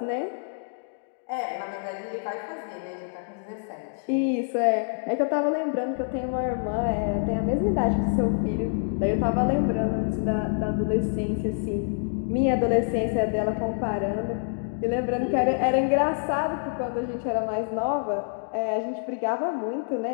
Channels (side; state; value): right; silent; digital silence